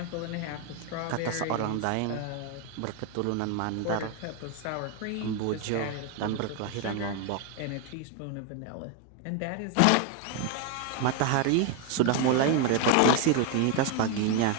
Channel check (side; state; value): both; different; correlation 0.01